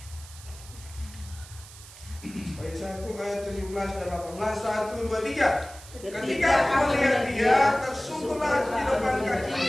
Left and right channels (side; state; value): right; noise; hiss, 18 dB below the sound